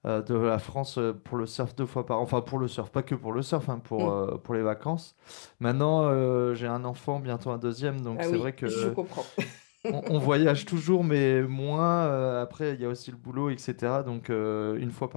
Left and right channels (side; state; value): right; silent; digital silence